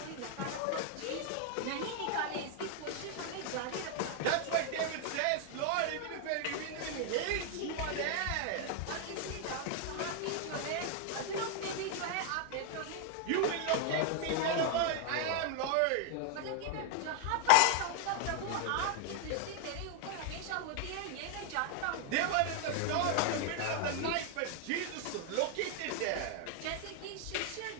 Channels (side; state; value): both; different; correlation 0.00